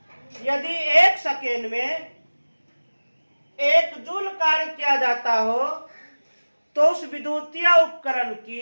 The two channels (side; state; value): both; inverted; correlation -1.00